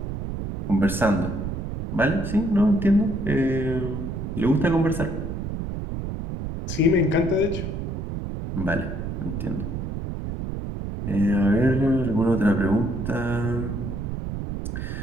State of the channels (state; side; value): noise; right; rumble, 5 dB below the sound